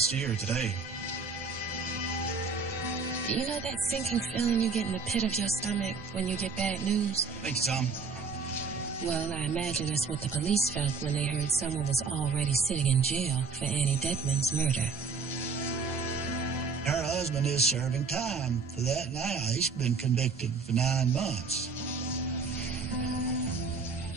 year, today. You know that sinking feeling you get in the pit of your stomach when you get bad news? Thank you, Tom. Well, I imagine that's what the police felt when they heard someone was already sitting in jail for Annie Deadman's murder. Her husband is serving time for that now. He's been convicted for 9 months.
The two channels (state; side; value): quieter; left; 4.8 dB